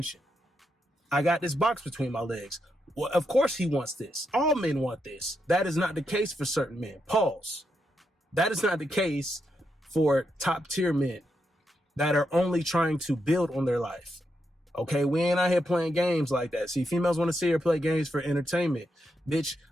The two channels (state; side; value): normal; both; correlation 0.83